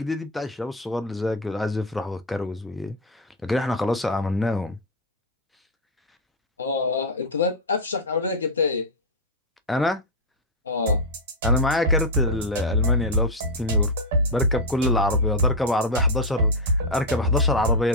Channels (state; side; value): normal; both; correlation 0.02